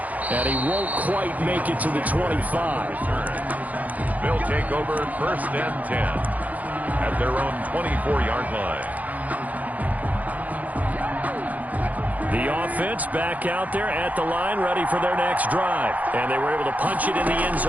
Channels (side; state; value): left; late; 0.077 ms